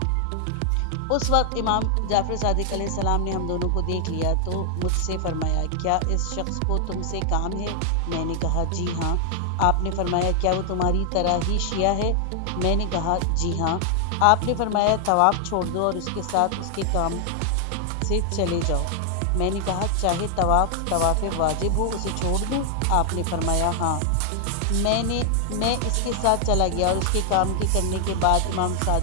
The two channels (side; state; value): both; different; correlation 0.00